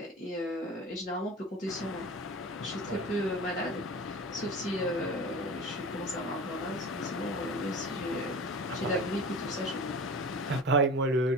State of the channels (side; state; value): both; normal; correlation 0.34